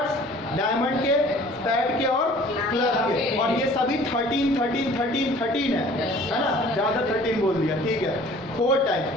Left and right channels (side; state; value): both; normal; correlation 0.50